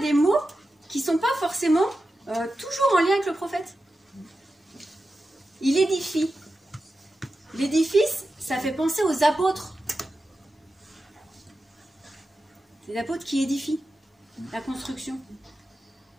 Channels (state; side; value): normal; both; correlation 0.92